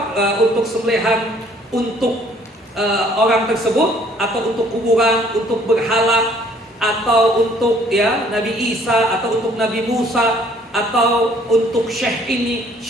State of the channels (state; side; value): normal; both; correlation 0.60